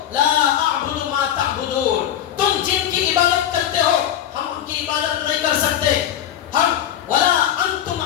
لا اعبد ما تعبدون, تم جن کی عبادت کرتے ہو ہم ان کی عبادت نہیں کر سکتے. ہم ولا انتم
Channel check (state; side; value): quieter; right; 10.6 dB